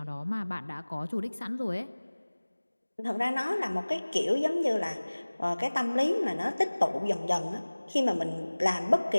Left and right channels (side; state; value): both; inverted; correlation -1.00